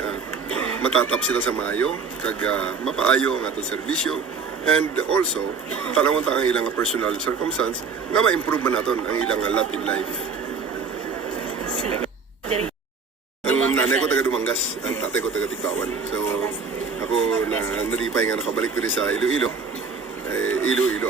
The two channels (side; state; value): left; quieter; 5.3 dB